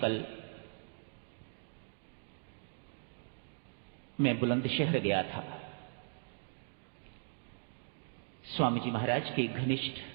मैं बुलंदशहर गया था स्वामी जी महाराज के घनिष्ठ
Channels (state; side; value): silent; left; digital silence